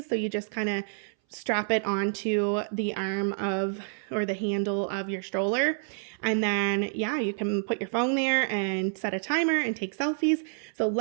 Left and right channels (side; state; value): left; silent; 58 dB below the other